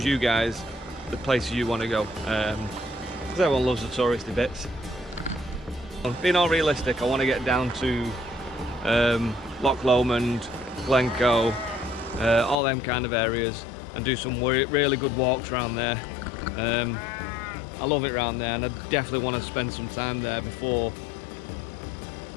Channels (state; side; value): drops out; right; at 12.6 s